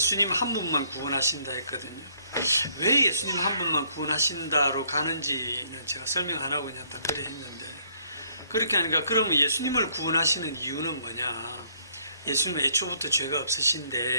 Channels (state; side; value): inverted; both; correlation -0.65